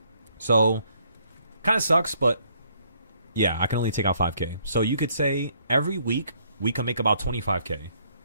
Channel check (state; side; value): inverted; both; correlation -0.67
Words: So, kind of sucks, but yeah, I can only take out 5K. So you could say every week we can make about 25K.